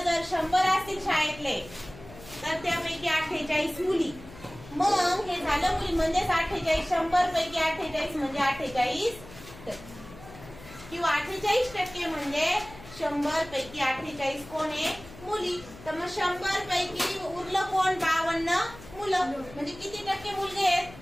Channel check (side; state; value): left; noise; hum, 18 dB below the sound